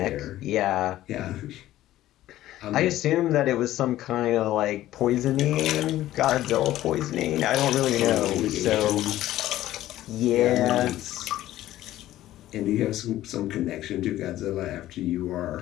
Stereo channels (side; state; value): right; quieter; 14.4 dB